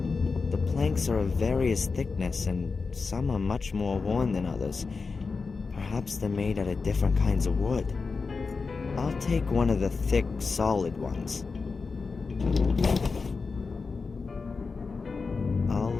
The planks are of various thickness, and some are much more worn than others. Perhaps they're made out of different kinds of wood. I'll take one of the thick, solid ones. I'll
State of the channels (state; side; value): quieter; right; 4.5 dB